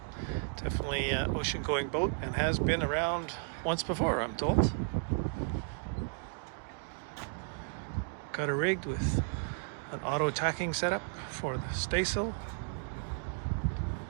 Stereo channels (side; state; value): left; silent; 55 dB below the other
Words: Definitely ocean-going boat, and has been around once before, I'm told. Got it rigged with an auto tacking setup for the staysail.